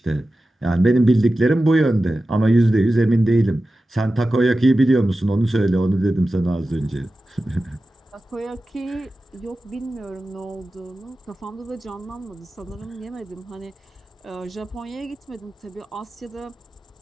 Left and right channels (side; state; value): both; normal; correlation 0.94